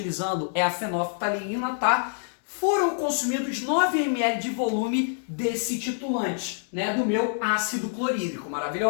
é a fenolftaleína, tá? Foram consumidos 9 ml de volume desse titulante, né, do meu ácido clorídrico,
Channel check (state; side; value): silent; right; digital silence